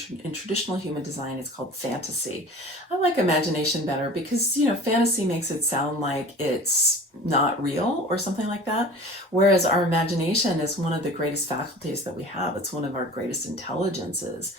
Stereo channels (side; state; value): both; normal; correlation 0.41